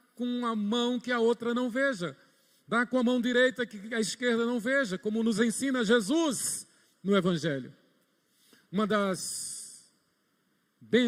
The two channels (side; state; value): both; identical; correlation 1.00